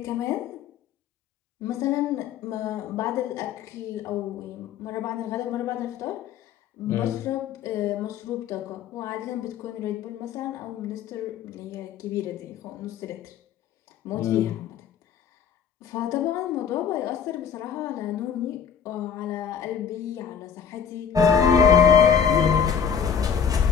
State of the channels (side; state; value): right; quieter; 7.6 dB